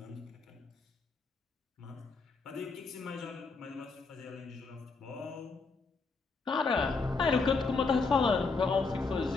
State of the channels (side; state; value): right; quieter; 4.2 dB